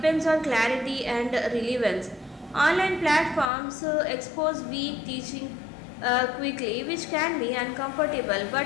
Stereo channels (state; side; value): drops out; right; at 3.5 s